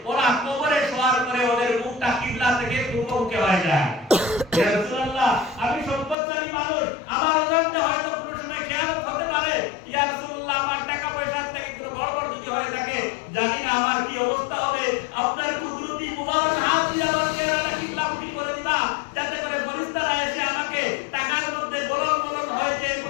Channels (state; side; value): drops out; right; at 6.2 s